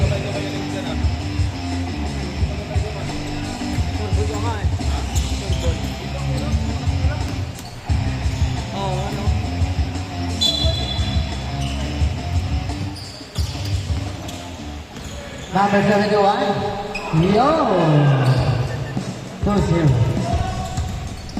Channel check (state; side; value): identical; both; correlation 1.00